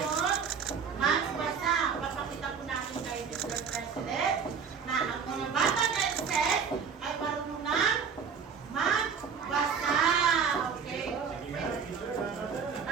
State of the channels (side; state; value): left; quieter; 6.3 dB